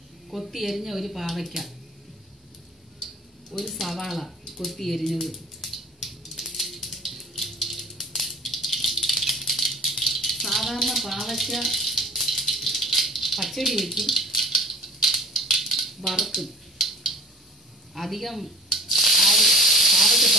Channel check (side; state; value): both; normal; correlation 0.41